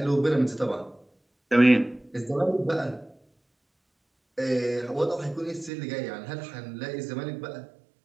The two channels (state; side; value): drops out; left; at 5.7 s